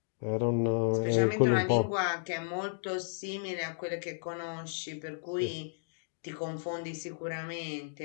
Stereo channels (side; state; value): right; silent; digital silence